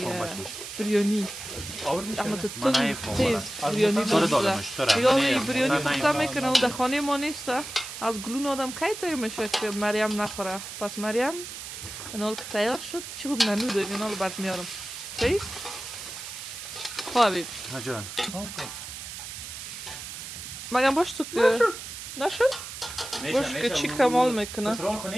بریانی اما تو تیز بریانی دلم شده دیگه بریانی پخته میکنه و در خانه ما نیست از گلون آدم کی تیر میشه که مریم نخوره. پس مریم اینال که تیار شد چی خوب ننو داریم اینال برد میارم چیز؟ خواه حبیب جان مگم باش تو که نشد؟ باش که چی کمال میکنه پترون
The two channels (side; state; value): right; noise; hiss, 10 dB below the sound